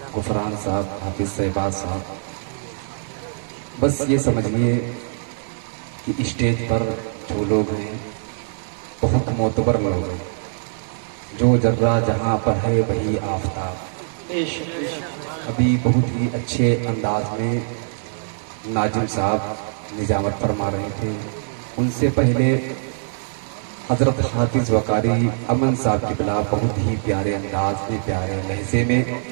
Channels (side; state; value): left; silent; 64 dB below the other